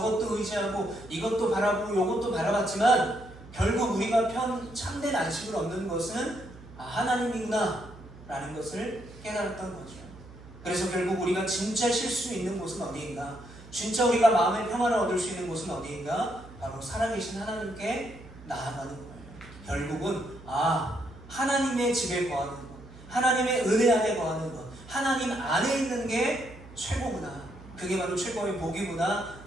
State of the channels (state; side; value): noise; right; hum, 18 dB below the sound